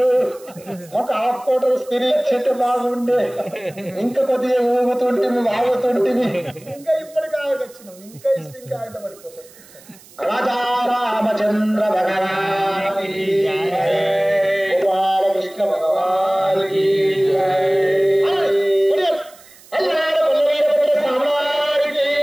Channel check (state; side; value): noise; right; hiss, 24 dB below the sound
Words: ఒక హాఫ్ కోటర్ స్త్రీ ఇచ్చేటే బాగుండే ఇంకా కొద్దిగా ఊగుతుంటే ఆగుతుంటే ఇంకా ఇప్పటికి ఆగొచ్చినాం ఇంకా ఇస్తే ఇంకా ఆయుధ పడిపోతాం రాజా రామచంద్ర భగవాన్